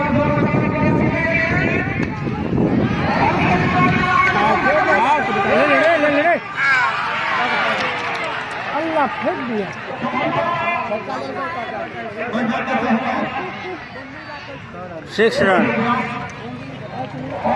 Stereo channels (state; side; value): identical; both; correlation 1.00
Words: अल्लाह फेंक दिया। 6 रन।